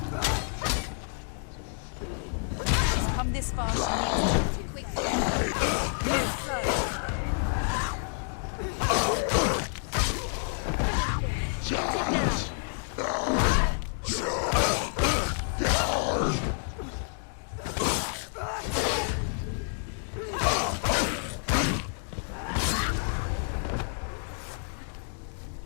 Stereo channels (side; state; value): right; silent; 59 dB below the other